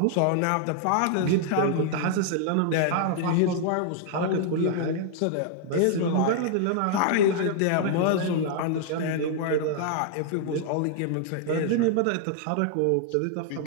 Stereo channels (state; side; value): different; both; correlation -0.01